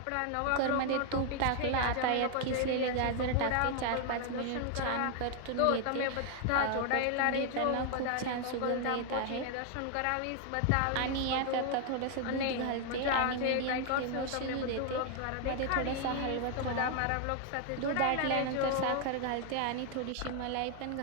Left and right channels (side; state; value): both; different; correlation 0.00